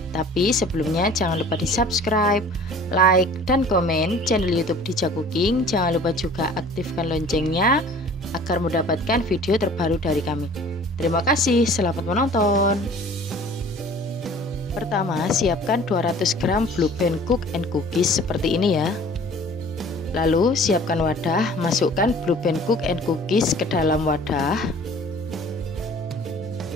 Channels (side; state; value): both; normal; correlation 0.48